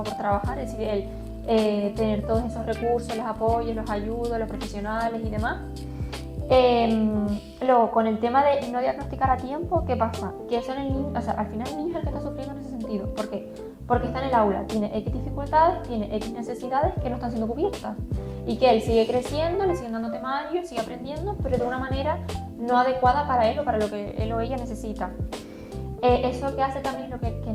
por trabajar, es decir, el tener todos esos recursos, los apoyos, los ayudos, los profesionales y demás. Luego, con el tema de no diagnosticar a tiempo, ¿qué pasa? Que eso en el niño, o sea, al final el niño es el que está sufriendo en ese sentido. ¿Por qué? Porque está en el aula, tiene X dificultades, tiene X necesidades que no están siendo cubiertas. Y que él sigue creciendo, le siguen dando temarios, sigue aprendiendo, pero de una manera no adecuada para él o para lo que él o ella necesita. Eso que hace también es lo que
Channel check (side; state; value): both; identical; correlation 1.00